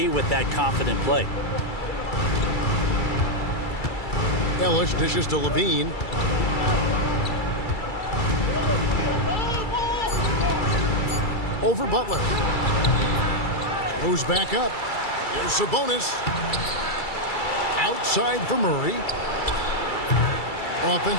with that confident play. Ellis dishes to Levine. Over Butler. Goes back up. Here's Sabonis. Outside for Murray.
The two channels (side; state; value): right; late; 2.3 ms